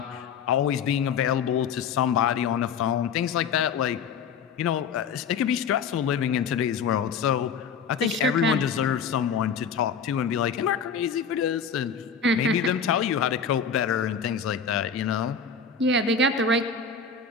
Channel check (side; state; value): right; quieter; 6.0 dB